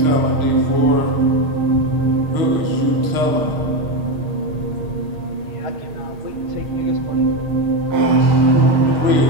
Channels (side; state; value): left; late; 6.4 ms